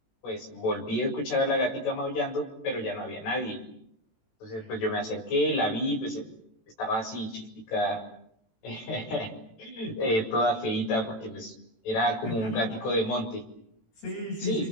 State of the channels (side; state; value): right; late; 18 ms